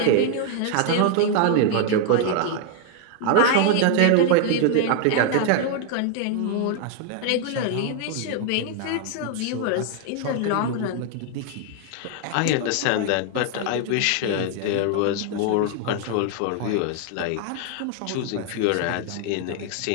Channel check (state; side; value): different; both; correlation 0.00